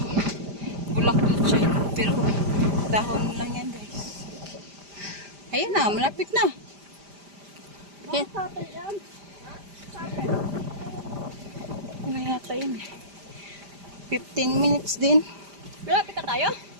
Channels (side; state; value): left; late; 5.0 ms